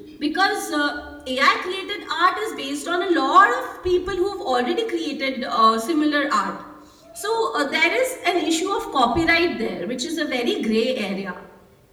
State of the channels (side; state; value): both; identical; correlation 1.00